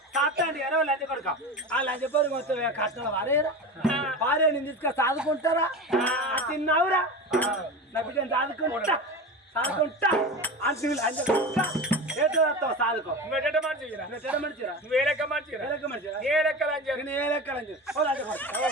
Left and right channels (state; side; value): normal; both; correlation 0.27